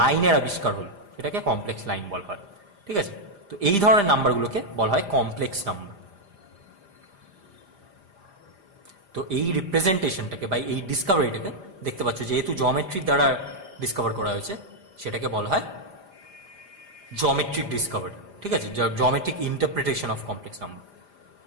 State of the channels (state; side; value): late; left; 5.0 ms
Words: আবিষ্কার হলো, সেটাকে কমপ্লেক্স লাইন বলা হয়। ঠিক আছে, তো এই ধরনের নাম্বারগুলোকে বলা হয় কমপ্লেক্স নাম্বার। তো এই রিপ্রেজেন্টেশনটাকে বা এই ডিসকভারিটাকে দেখতে পাচ্ছ, যেহেতু জিওমেট্রির দ্বারা ডিসকভার করা হয়েছে, সেটাকে বলা হয় জিওমেট্রিক ডিসকভারি। ঠিক আছে, geometric interpretation of complex number.